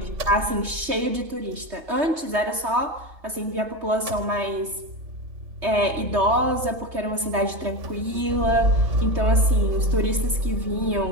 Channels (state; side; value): late; left; 3.2 ms